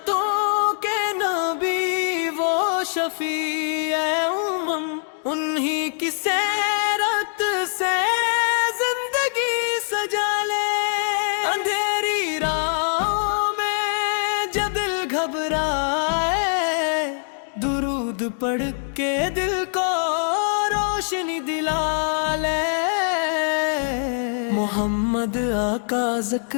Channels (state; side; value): silent; right; digital silence